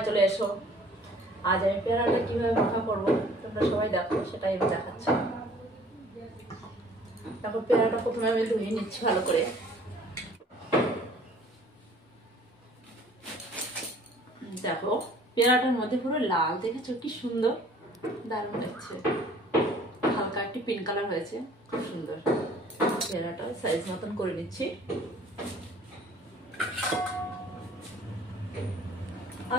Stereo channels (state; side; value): normal; both; correlation 0.54